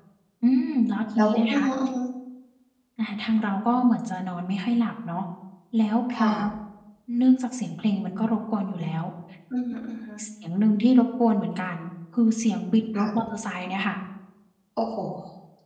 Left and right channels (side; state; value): both; identical; correlation 1.00